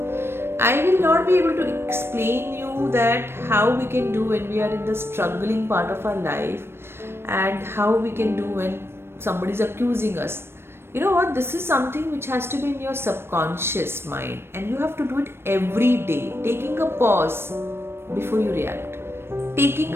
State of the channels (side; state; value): left; late; 0.12 ms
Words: I will not be able to explain you that how we can do when we are in the struggling part of our life, and how we can do when somebody is accusing us. You know what? This is something which has to be in your subconscious mind, and you have to do it every day. Taking a pause before you react, taking